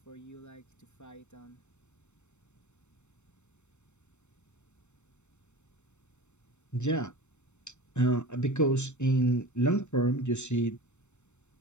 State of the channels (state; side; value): late; right; 0.83 ms